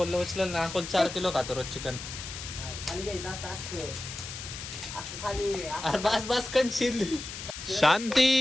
उचलेल ना. अकोल 4 किलो खातो रोज चिकन. बस बस कंशील.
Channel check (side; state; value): left; noise; hiss, 9 dB below the sound